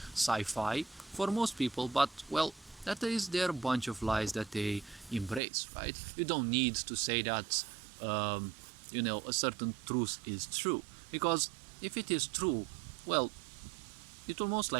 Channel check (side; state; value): left; drops out; at 5.4 s